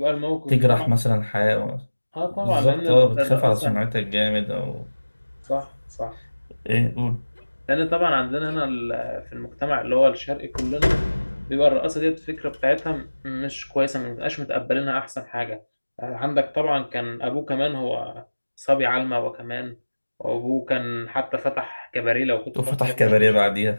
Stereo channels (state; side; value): inverted; both; correlation -1.00